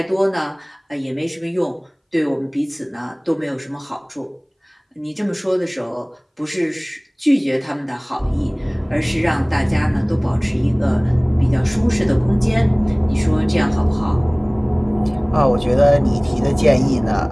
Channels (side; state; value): both; identical; correlation 1.00